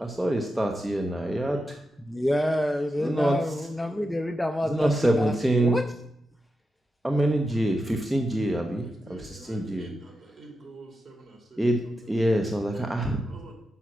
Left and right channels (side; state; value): both; normal; correlation 0.88